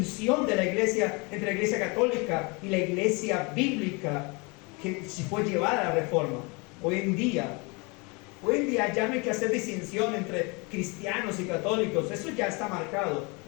de la iglesia entre la iglesia católica y la iglesia bíblica, que si fue llevada a la Reforma. Hoy en día ya no hay que hacer distinción entre cristianos y católicos, eso ya está marcado.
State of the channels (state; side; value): quieter; right; 29.2 dB